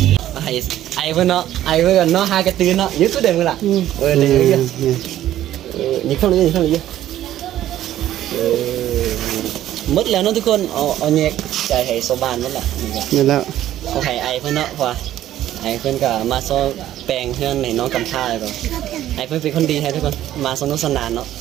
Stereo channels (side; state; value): left; quieter; 12.8 dB